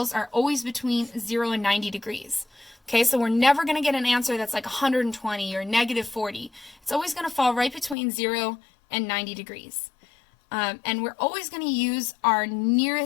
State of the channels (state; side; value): drops out; right; at 8.0 s